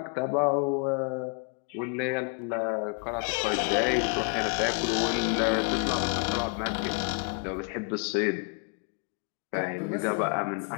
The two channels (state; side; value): quieter; right; 38.0 dB